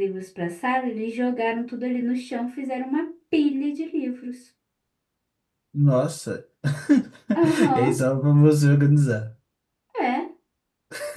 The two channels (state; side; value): identical; both; correlation 1.00